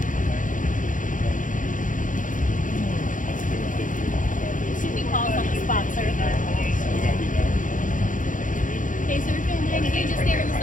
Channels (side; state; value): right; late; 0.38 ms